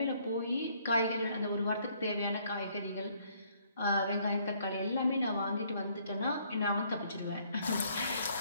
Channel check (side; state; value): both; inverted; correlation -0.65